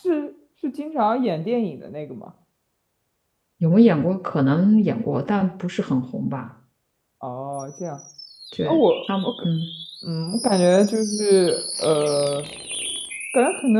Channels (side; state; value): both; identical; correlation 1.00